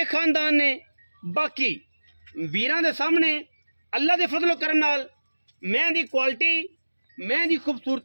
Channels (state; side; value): inverted; both; correlation -1.00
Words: खानदान ने। बाकी वीरां दे सामने अल्लाह के फजल करम नाल मैं दी क्वालिटी, मैं दी